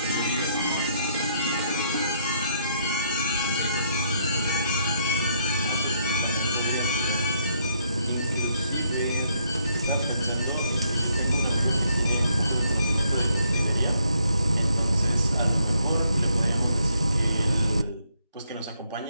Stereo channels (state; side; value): inverted; both; correlation -0.72